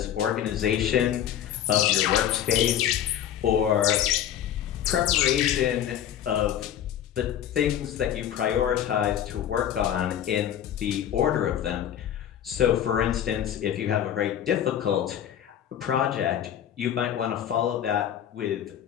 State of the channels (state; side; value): quieter; right; 10.3 dB